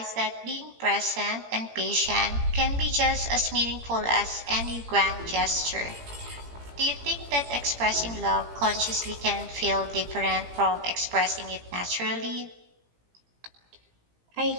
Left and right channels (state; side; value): late; left; 17 ms